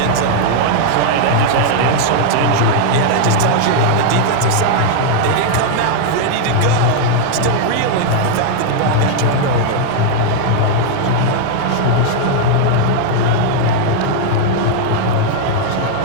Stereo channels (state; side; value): different; both; correlation 0.00